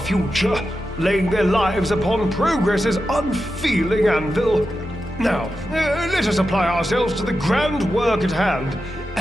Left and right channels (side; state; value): both; normal; correlation 0.90